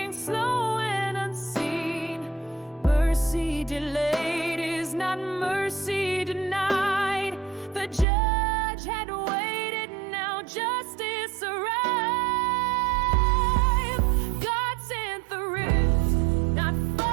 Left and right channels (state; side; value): drops out; left; at 8.1 s